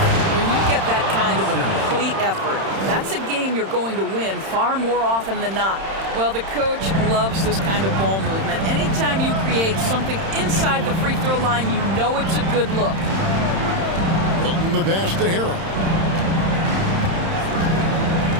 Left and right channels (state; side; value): late; left; 31 ms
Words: When you get that kind of a complete effort, that's a game you're going to win far more often than not. Well, the coach loves this kind of ball movement. Anytime you create something inside the free throw line, you know it's a good look. Milton the pass to Harrell.